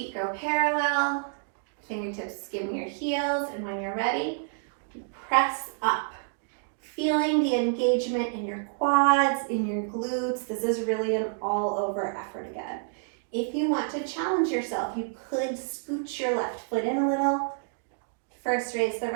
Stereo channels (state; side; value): silent; left; digital silence